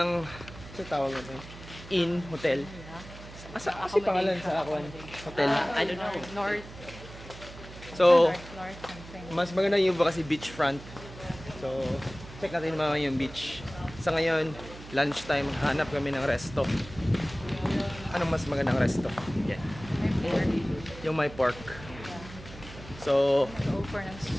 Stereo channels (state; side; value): noise; right; hum, 15 dB below the sound